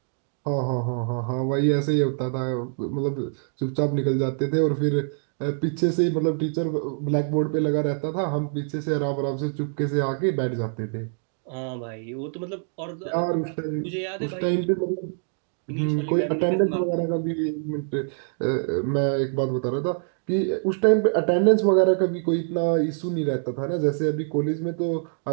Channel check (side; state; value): left; silent; digital silence